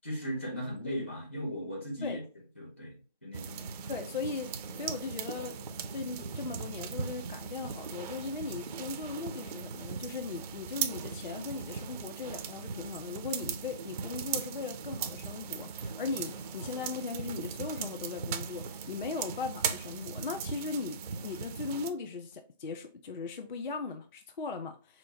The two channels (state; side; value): inverted; both; correlation -0.32